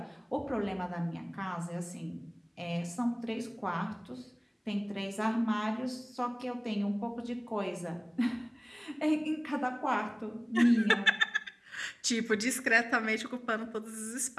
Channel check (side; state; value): both; identical; correlation 1.00